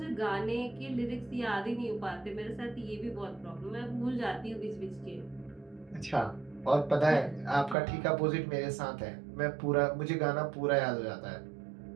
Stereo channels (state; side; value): drops out; left; at 7.8 s